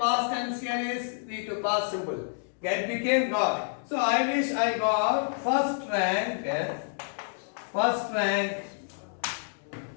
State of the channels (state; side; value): silent; right; digital silence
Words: tense, here is V2 past simple. Get became got. So I wish I got first rank.